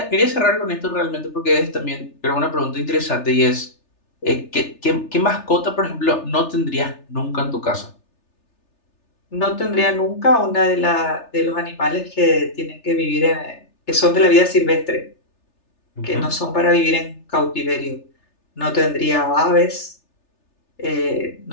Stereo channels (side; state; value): right; late; 3.3 ms